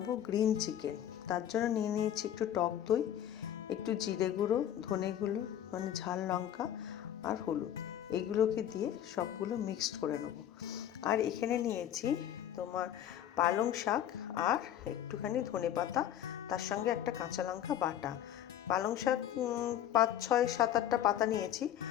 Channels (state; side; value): quieter; right; 11.0 dB